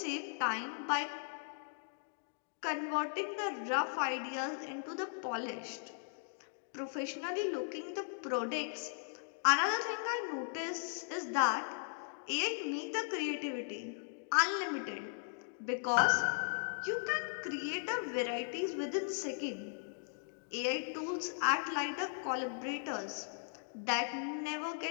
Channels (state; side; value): silent; right; digital silence